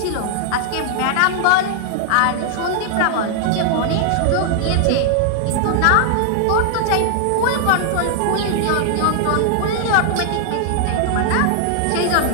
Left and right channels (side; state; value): both; different; correlation -0.01